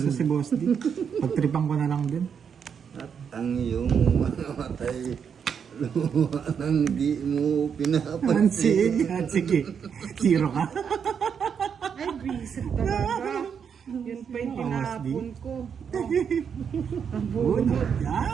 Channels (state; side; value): quieter; left; 7.1 dB